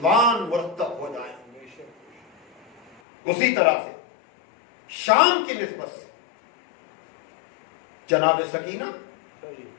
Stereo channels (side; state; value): right; drops out; at 3.0 s